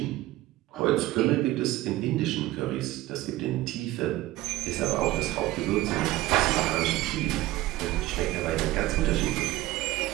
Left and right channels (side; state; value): left; quieter; 17.2 dB